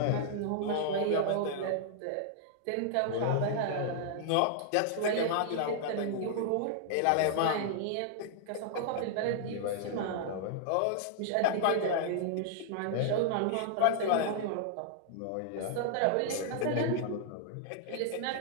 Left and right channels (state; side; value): different; both; correlation -0.01